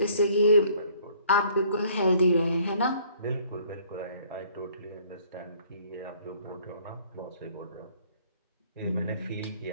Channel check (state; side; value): inverted; both; correlation -0.58